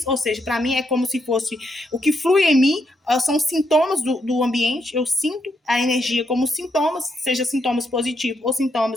ou seja, para mim é como se fosse o que flui em mim, são sintomas do ambiente. Eu sinto a energia como sintomas, seja sintomas positivos ou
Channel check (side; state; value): both; normal; correlation 0.79